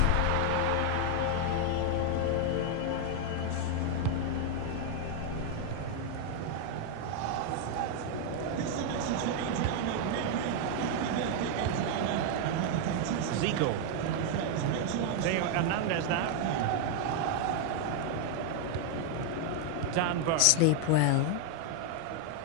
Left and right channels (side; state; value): both; different; correlation 0.00